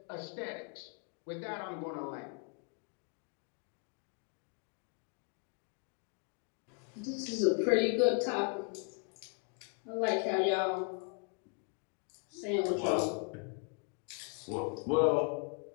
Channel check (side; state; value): right; quieter; 37.3 dB